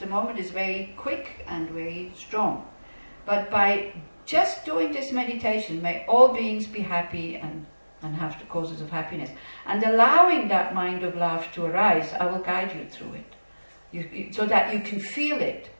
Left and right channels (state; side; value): inverted; both; correlation -1.00